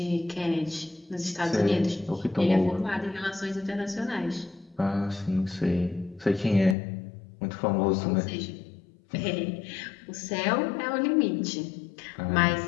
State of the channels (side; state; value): right; drops out; at 6.8 s